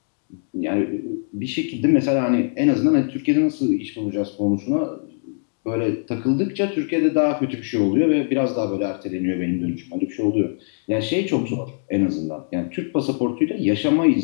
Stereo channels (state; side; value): silent; right; digital silence